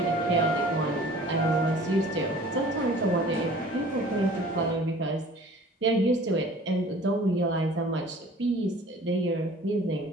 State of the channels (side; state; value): both; normal; correlation 0.48